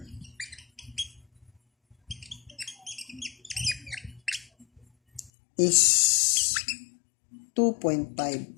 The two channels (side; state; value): right; drops out; at 5.3 s